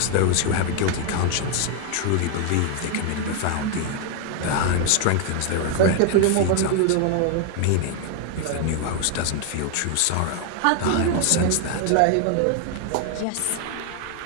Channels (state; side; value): different; both; correlation 0.00